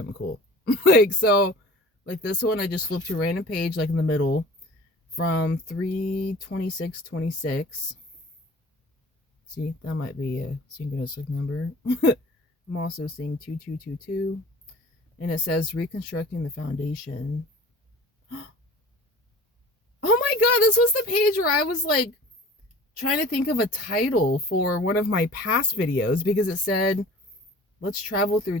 cool. Like, so like this one I just flipped to a random page like in the middle from 3/26/26. See, that might be a synchronistic number. I'm also seeing 2222, and it says reconstructing the foundation. Oh my god, this was the page where I was like trying to think of a title for one of my past videos because it said, let's travel through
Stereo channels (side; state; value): both; normal; correlation 0.43